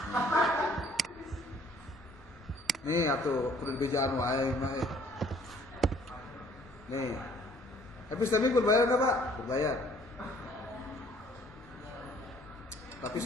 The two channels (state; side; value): normal; both; correlation 0.59